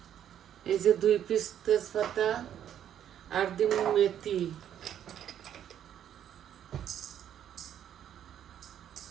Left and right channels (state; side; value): quieter; left; 10.1 dB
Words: এই যে 2 পিস তেজপাতা, আর দিমু মেথি।